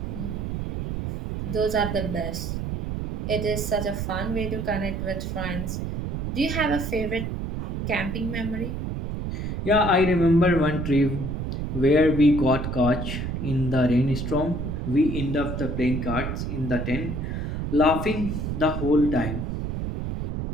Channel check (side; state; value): right; noise; rumble, 4 dB below the sound